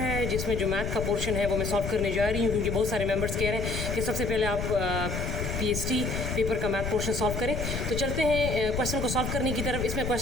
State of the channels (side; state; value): left; noise; rumble, 4 dB below the sound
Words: जिसमें जो मैथ का पोर्शन है वो मैं सॉल्व करने जा रही हूँ, क्योंकि बहुत सारे मेंबर्स कह रहे हैं कि सबसे पहले आप पीएचडी पेपर का मैथ पोर्शन सॉल्व करें। तो चलते हैं क्वेश्चन को सॉल्व करने की तरफ। इसमें